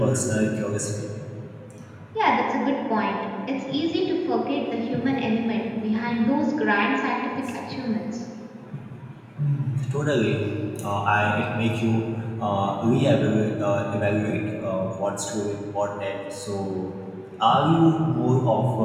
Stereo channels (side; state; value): both; identical; correlation 1.00